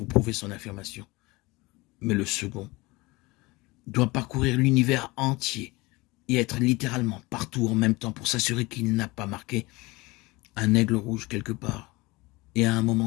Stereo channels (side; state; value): right; quieter; 22.6 dB